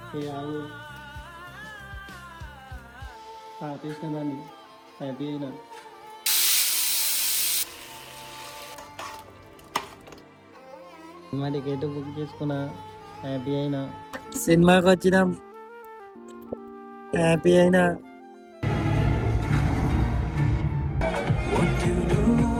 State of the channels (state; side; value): identical; both; correlation 1.00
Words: ఏ ఆగు ఆపేసిన దాన్ని, హ్యాపీ అయినా. సినిమా టికెట్ బుక్ చేసుకున్నా, హ్యాపీ అయినా. సినిమాకి వచ్చినాం, హ్యాపీ అయినా.